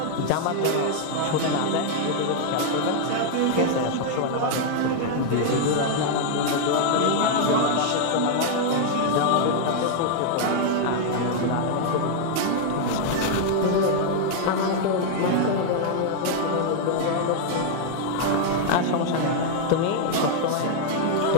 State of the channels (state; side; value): different; both; correlation 0.00